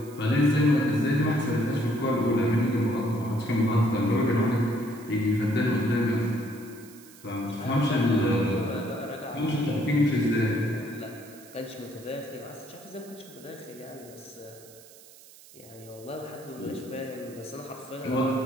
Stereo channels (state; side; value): noise; right; hiss, 22 dB below the sound